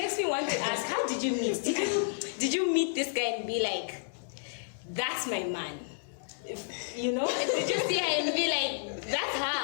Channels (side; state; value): right; silent; 57 dB below the other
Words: me want to ask: how did you meet? Did you meet this guy and be like, "That's my man"? You know, did you see her and be like, "That's her"?